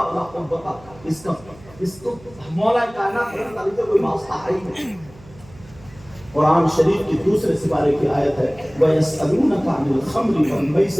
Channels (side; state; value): right; noise; hum, 23 dB below the sound